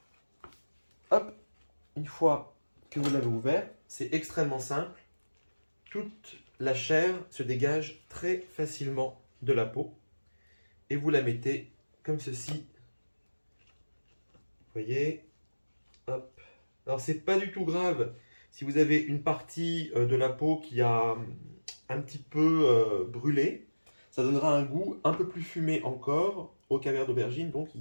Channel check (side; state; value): both; inverted; correlation -1.00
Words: Hop. Une fois que vous l'avez ouvert, c'est extrêmement simple. Toute la chair se dégage très facilement de la peau. Et vous la mettez comme ceci. Vous voyez. Hop. Alors c'est pas du tout grave si vous avez une partie de la peau qui a un petit peu brûlé. Ça donnera un goût un peu plus fumé encore au caviar d'aubergine. Donc il